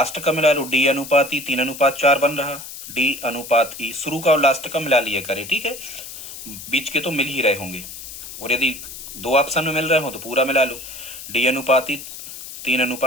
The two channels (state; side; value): noise; left; hiss, 12 dB below the sound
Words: का मिला लो, डी अनुपात ई 3:4 बन रहा, डी अनुपात ई, शुरू का और लास्ट का मिला लिया करे, ठीक है, बीच के तो मिल ही रहे होंगे, और यदि दो ऑप्शन में मिल रहे हो तो पूरा मिला लो, डी अनुपात ई